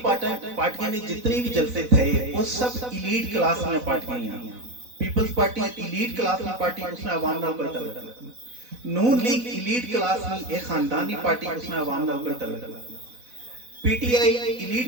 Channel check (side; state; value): left; late; 4.0 ms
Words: پارٹیاں نے جتنی بھی جلسے تھے وہ سب ایلیٹ کلاس میں پارٹیاں ہیں پیپلز پارٹی ایلیٹ کلاس میں پارٹی اس میں عوام نال کوئی تعلق نہیں نون لیگ ایلیٹ کلاس میں ایک خاندانی پارٹی اس میں عوام نال کوئی تعلق نہیں P T I